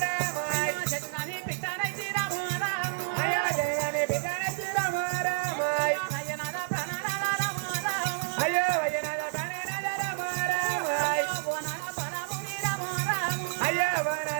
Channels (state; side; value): silent; left; digital silence